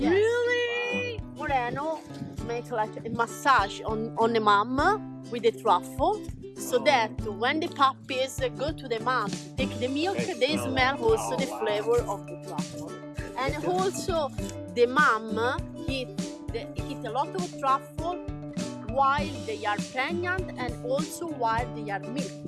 Really? Moreno make like a massage on the mom with the truffle, so that when the puppies go to the mom to take the milk, they smell also the flavor of the truffle. And also the mom eat a lot of truffle while they are pregnant and also while they are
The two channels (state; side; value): identical; both; correlation 1.00